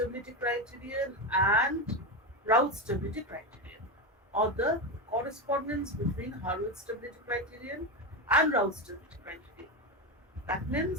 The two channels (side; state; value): both; normal; correlation 0.14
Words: criterion and Raoult stability criterion, or the correspondence between Harvard stability criterion and Raoult stability criterion. That